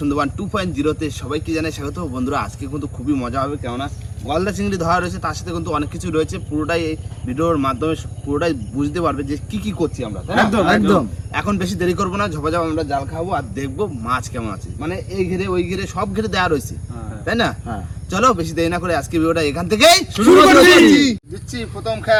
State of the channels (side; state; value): both; identical; correlation 1.00